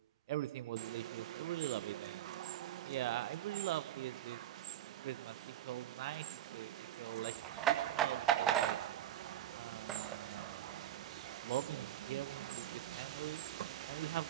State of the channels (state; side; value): quieter; left; 12.3 dB